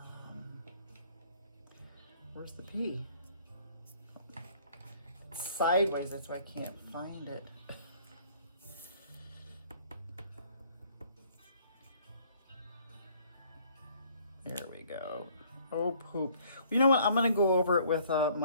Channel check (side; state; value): both; inverted; correlation -0.60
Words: the P? It's sideways, that's why I can't find it. There we go. Oh, poop. You know what? I'm going to go over it with